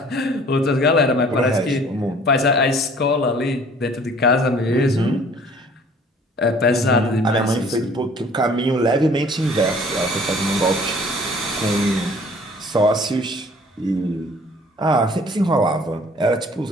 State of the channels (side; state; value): both; normal; correlation 0.53